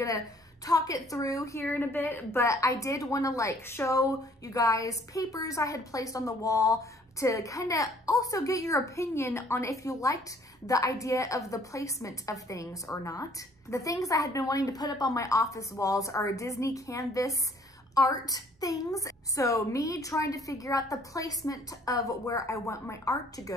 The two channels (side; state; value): both; normal; correlation 0.59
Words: talk it through here in a bit, but I did want to like show you guys papers I had placed on the wall to kind of also get your opinion on if you liked the idea of the placement of things or not. The things I had been wanting to put up on my office walls are Disney canvas art things. So me trying to figure out the placement of where I want my art to